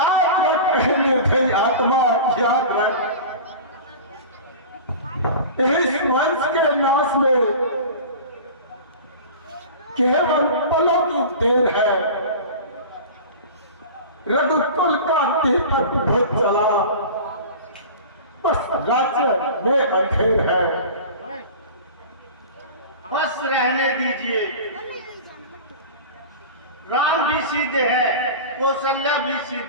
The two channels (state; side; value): inverted; both; correlation -0.35